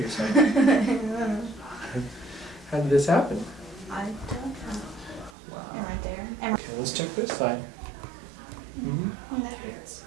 side? How did this happen? I don't know. Wow. And right there. And Okay, let's check this side. and that hurts.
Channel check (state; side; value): drops out; left; at 5.4 s